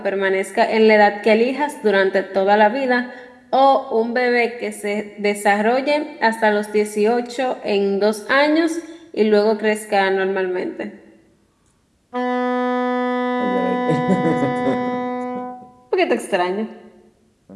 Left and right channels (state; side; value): identical; both; correlation 1.00